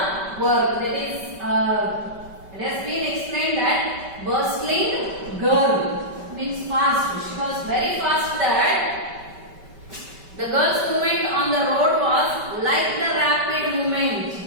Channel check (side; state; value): left; late; 5.2 ms